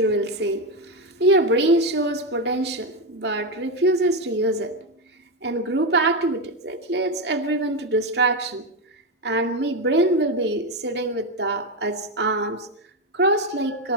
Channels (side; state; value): both; normal; correlation 0.09